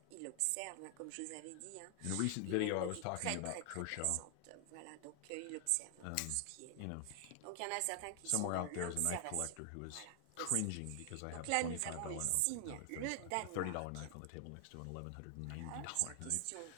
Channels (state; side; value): different; both; correlation 0.00